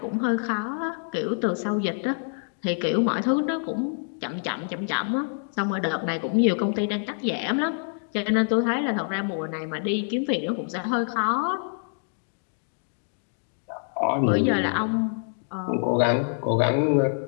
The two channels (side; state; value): right; silent; 61 dB below the other